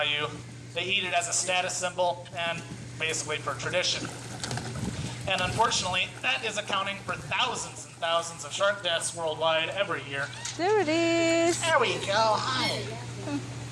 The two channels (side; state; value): both; identical; correlation 1.00